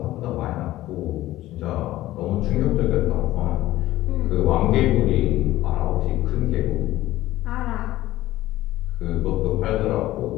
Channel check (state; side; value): quieter; right; 15.7 dB